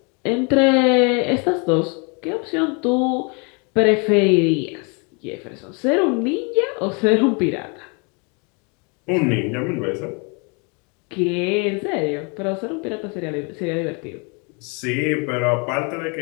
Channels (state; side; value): quieter; right; 33.4 dB